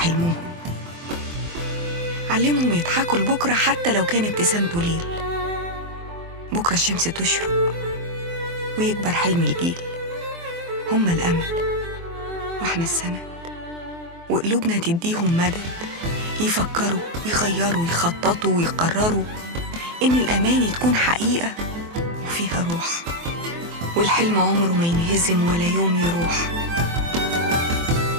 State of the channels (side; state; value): left; late; 24 ms